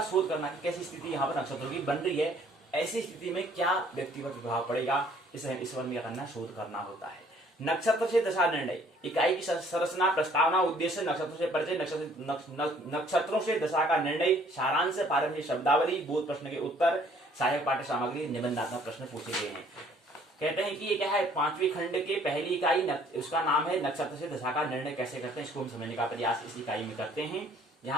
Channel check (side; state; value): both; normal; correlation 0.59